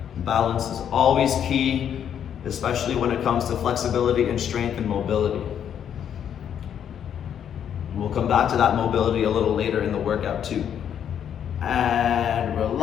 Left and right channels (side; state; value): right; quieter; 9.0 dB